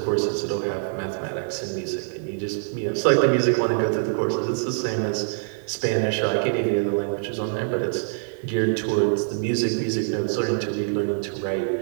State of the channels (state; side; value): silent; left; digital silence